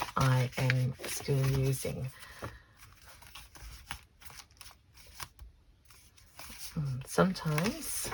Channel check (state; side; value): identical; both; correlation 1.00